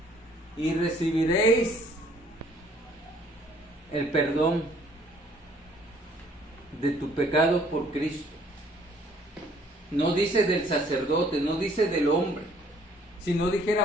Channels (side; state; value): both; normal; correlation 0.60